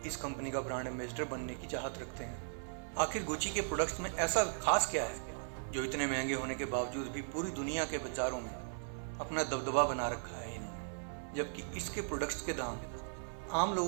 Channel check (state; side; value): silent; left; 53 dB below the other